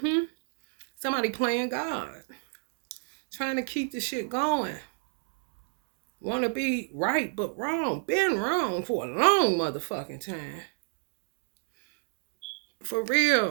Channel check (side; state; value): left; silent; digital silence